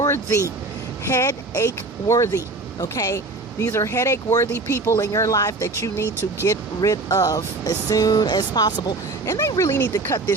Headache worthy. Okay? These are headache worthy people in your life that you need to get rid of as soon as possible. And they really need to cut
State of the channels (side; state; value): left; quieter; 3.4 dB